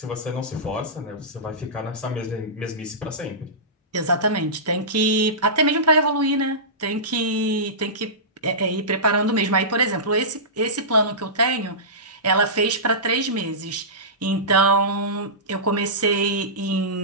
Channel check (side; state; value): both; normal; correlation -0.20